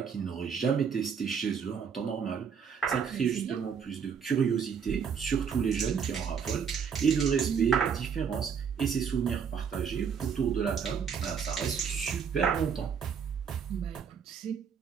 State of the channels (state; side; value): quieter; left; 6.9 dB